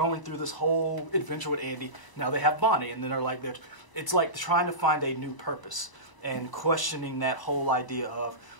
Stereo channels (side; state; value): right; late; 1.0 ms